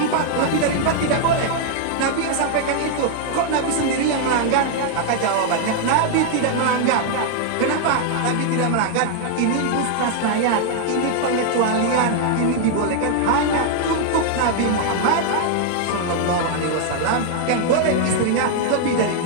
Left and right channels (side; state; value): both; different; correlation 0.00